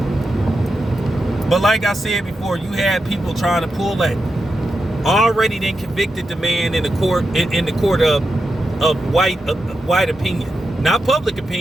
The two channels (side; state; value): both; normal; correlation 0.88